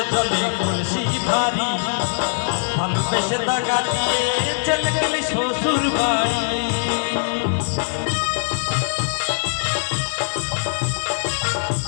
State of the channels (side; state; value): right; silent; digital silence